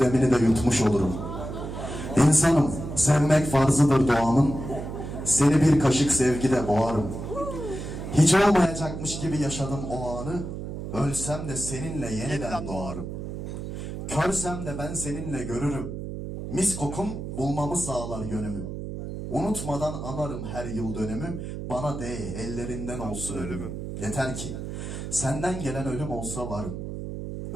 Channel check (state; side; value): noise; right; hum, 7 dB below the sound